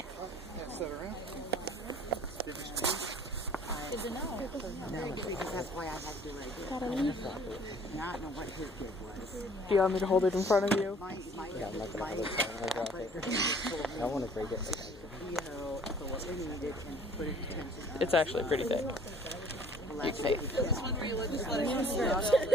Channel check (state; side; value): normal; both; correlation 0.54